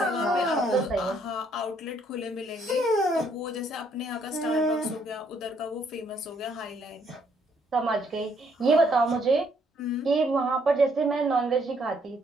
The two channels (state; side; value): normal; both; correlation 0.69